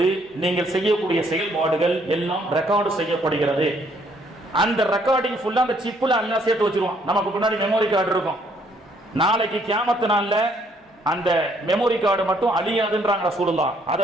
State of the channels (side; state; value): both; normal; correlation 0.66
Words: நீங்கள் செய்யக்கூடிய செயல்பாடுகள் எல்லாம் ரெக்கார்டு செய்யப்படுகிறது. அந்த ரெக்கார்டிங் ஃபுல்லா அந்த சிப்புல அல்லாஹ் சேர்த்து வச்சிருவான். நமக்கு முன்னாடி மெமோரி கார்டு இருக்கும். நாளைக்கு கியாமத்து நாள்ல அந்த மெமோரி கார்டு மட்டும் அழியாதுன்றாங்க ரசூலுல்லாஹ். அதை